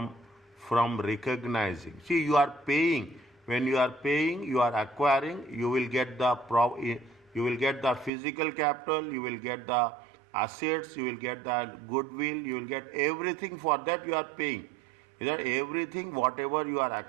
recognizing. See, you are paying. When you are paying, you are acquiring. You will get the physical capital. You will get the assets. You will get the goodwill. You will get everything. For that you are paying. That everything, whatever you are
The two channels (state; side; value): drops out; left; at 8.1 s